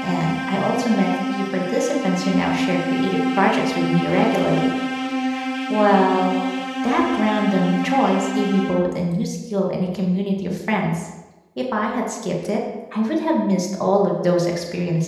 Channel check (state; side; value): identical; both; correlation 1.00